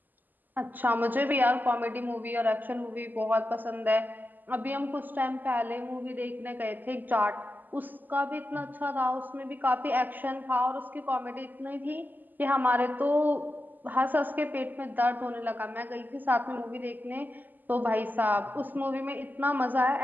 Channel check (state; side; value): late; left; 0.086 ms